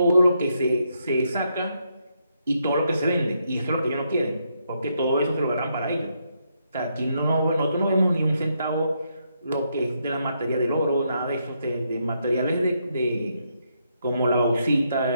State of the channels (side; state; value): both; inverted; correlation -0.78